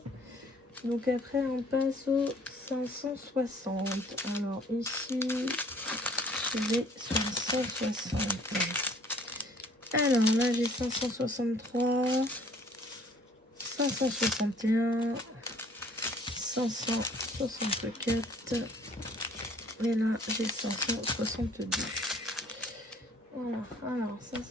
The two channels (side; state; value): both; normal; correlation 0.55